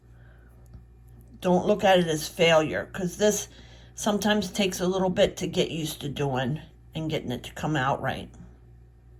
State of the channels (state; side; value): identical; both; correlation 1.00